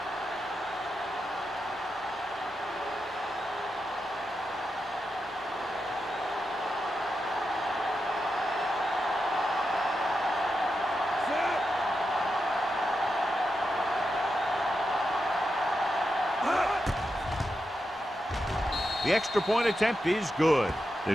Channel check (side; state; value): both; normal; correlation 0.87